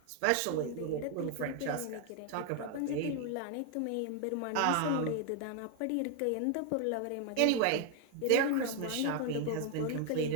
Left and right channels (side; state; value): both; different; correlation 0.01